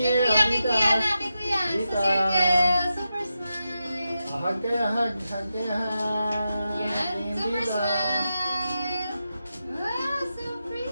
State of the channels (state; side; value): inverted; both; correlation -0.89